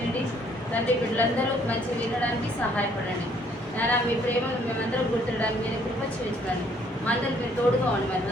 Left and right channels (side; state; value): both; normal; correlation 0.64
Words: తండ్రి, బిడ్డలందరూ మంచి వినడానికి సహాయపడండి. నాన్న, మీ ప్రేమను మేమందరం గుర్తించడానికి మీరు కృప చేయించండి. మా అందరికి మీరు తోడుగా ఉండి మరి